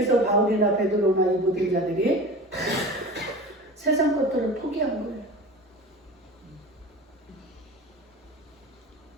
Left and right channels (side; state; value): both; normal; correlation 0.34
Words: 바울이나 베드로나 이 모든 자들이 다 세상 것들을 포기한 거예요.